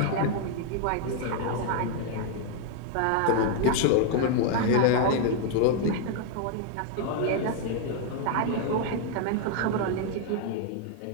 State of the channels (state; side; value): different; both; correlation 0.00